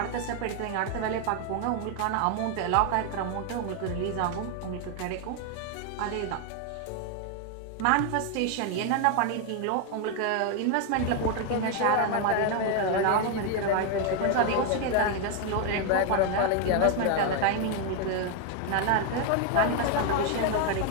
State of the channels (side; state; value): both; different; correlation 0.01